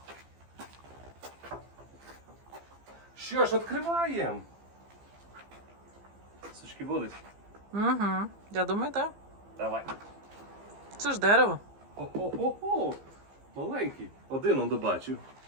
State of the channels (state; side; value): late; left; 15 ms